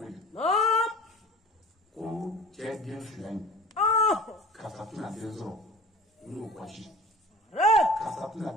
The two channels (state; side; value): normal; both; correlation 0.42